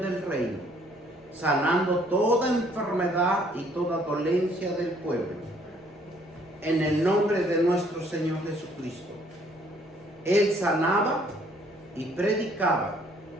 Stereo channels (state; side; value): normal; both; correlation 0.62